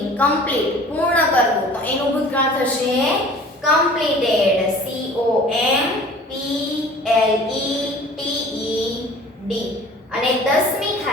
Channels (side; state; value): both; normal; correlation 0.46